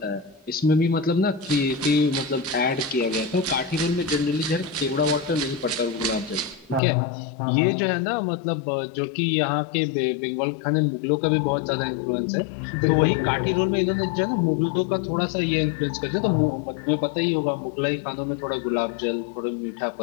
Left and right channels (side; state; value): right; drops out; at 6.8 s